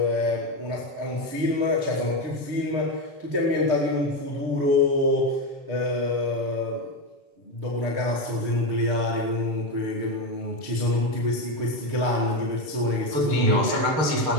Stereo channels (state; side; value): late; left; 6.6 ms